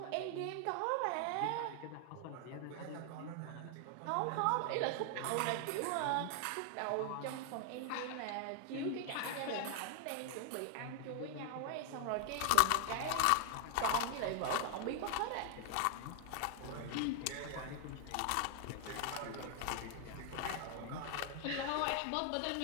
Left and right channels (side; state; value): both; different; correlation 0.00